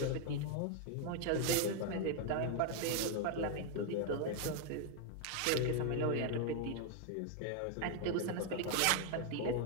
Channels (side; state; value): both; different; correlation 0.00